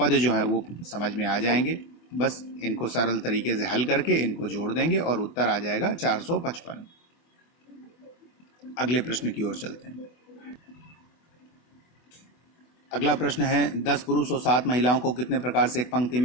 जो है वो समझ में आ जाएंगे। बस इनको सरल तरीके से हल करके इनको जोड़ देंगे और उत्तर आ जाएगा 455। अगले प्रश्न की ओर चलते हैं। अगला प्रश्न है, 10 पुरुष और 7 महिलाओं को कितने प्रकार से एक पंक्ति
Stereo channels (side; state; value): right; late; 24 ms